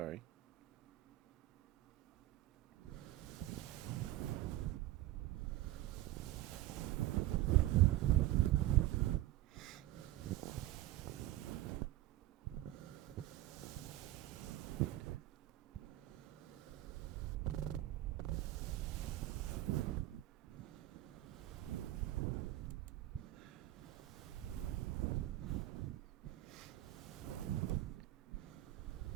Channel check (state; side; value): quieter; left; 15.5 dB